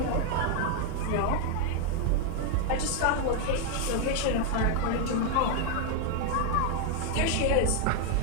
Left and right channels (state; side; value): different; both; correlation 0.00